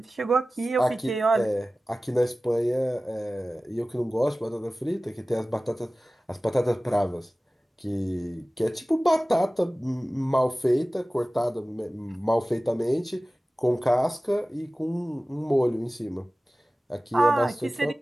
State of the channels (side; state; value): both; normal; correlation 0.97